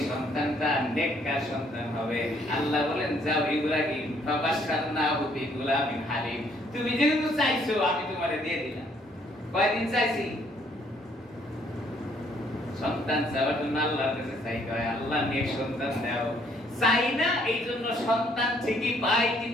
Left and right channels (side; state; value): both; normal; correlation 0.66